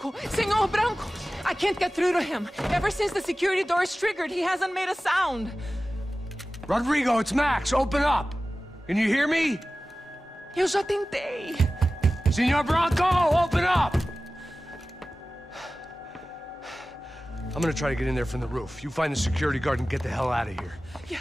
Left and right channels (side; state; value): both; normal; correlation 0.96